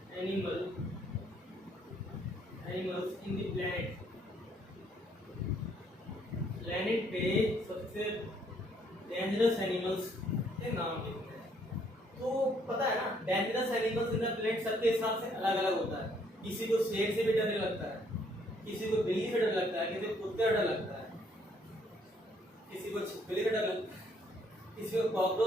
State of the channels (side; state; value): both; normal; correlation 0.67